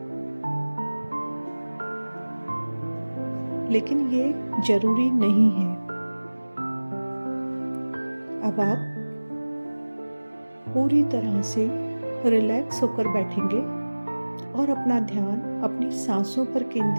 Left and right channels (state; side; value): inverted; both; correlation -1.00